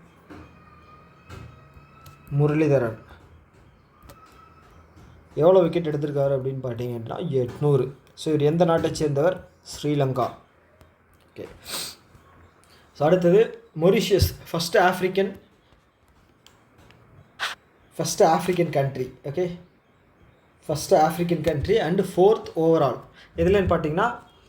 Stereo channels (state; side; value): identical; both; correlation 1.00